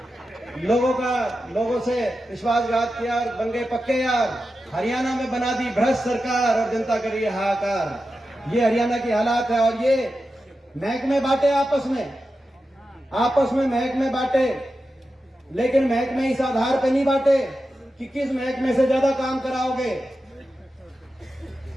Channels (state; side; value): normal; both; correlation 0.91